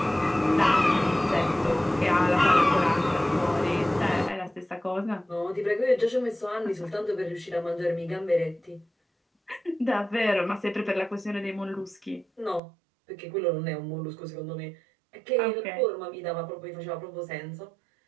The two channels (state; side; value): drops out; left; at 12.6 s